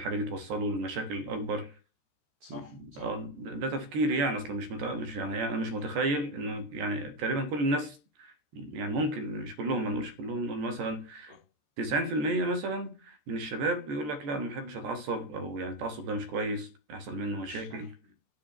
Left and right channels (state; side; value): late; left; 13 ms